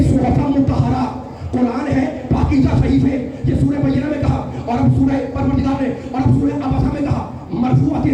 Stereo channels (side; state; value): both; identical; correlation 1.00